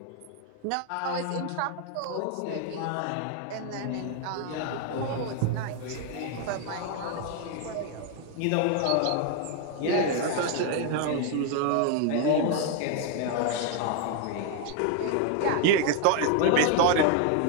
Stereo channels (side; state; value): both; different; correlation 0.01